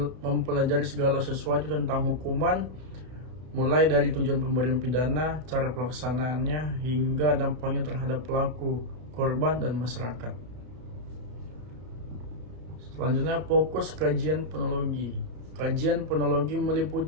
mempelajari segala sesuatu tentang hukuman, mulai dari tujuan pemberian pidana, cara pelaksanaannya, hingga dampaknya terhadap pelaku, korban, dan masyarakat. Selanjutnya, fokus kajian penologi. Kajian penologi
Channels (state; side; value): late; left; 32 ms